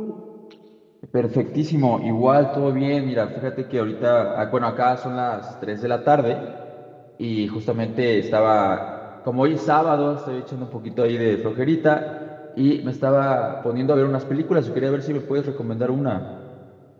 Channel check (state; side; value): identical; both; correlation 1.00